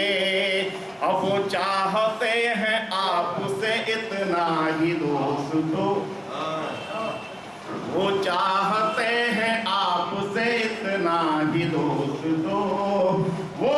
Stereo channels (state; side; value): identical; both; correlation 1.00